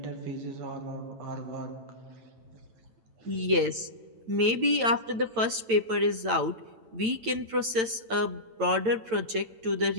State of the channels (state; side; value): late; left; 9.0 ms